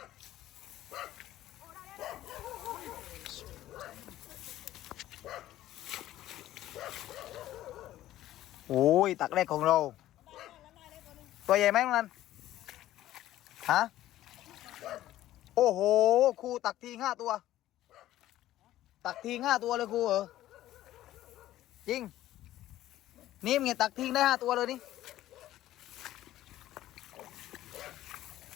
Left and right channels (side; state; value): right; quieter; 14.1 dB